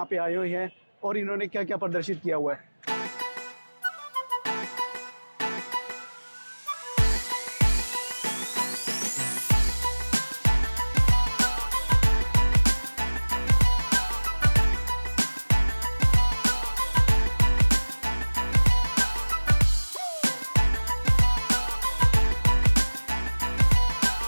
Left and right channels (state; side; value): inverted; both; correlation -1.00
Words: पे आए हुए हैं और इन्होंने क्या क्या प्रदर्शित किया हुआ है।